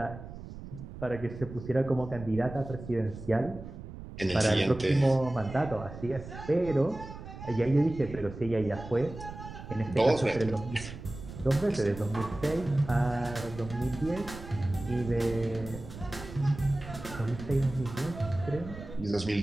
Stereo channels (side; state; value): right; noise; rumble, 12 dB below the sound